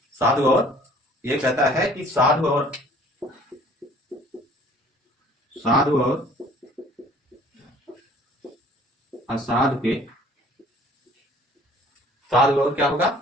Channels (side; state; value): both; normal; correlation 0.53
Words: साधु और, ये कहता है कि साधु और असाधु के, साधु और क्या होगा,